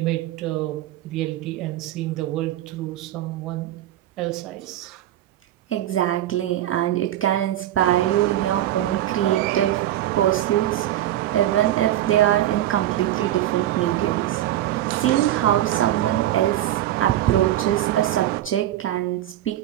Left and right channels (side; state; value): left; quieter; 13.2 dB